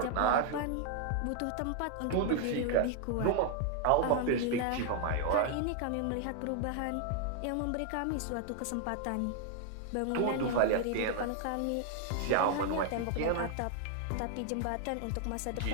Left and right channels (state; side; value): different; both; correlation 0.00